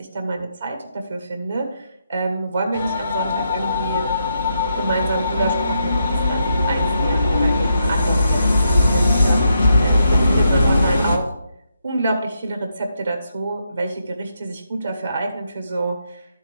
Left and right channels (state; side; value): inverted; both; correlation -0.80